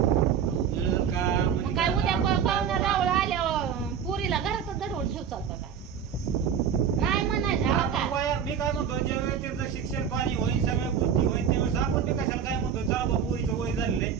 मिळेल का म्हणजे मग काय उद्या पाहुणा रावळ आल्यावर पुरीला घरातच दडवून ठेव चालतं का? नाही म्हणायचं हो का? मी काय म्हणतो, ज्यावेळेस त्यांचं शिक्षण पाणी होईल, सगळ्या गोष्टी होईल, त्यावेळेस आपण ते कशाला काय म्हणतो, चला बा पोरीचं वय झालेलं आहे,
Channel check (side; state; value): left; quieter; 7.8 dB